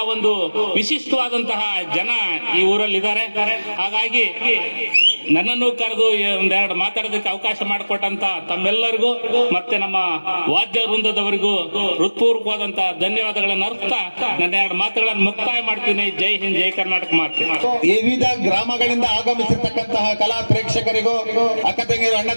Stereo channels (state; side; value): inverted; both; correlation -1.00